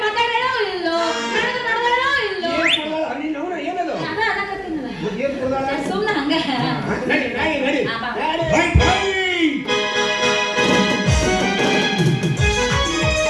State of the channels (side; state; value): both; identical; correlation 1.00